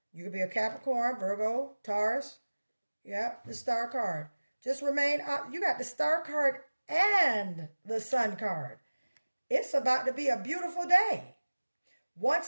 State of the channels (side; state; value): both; inverted; correlation -1.00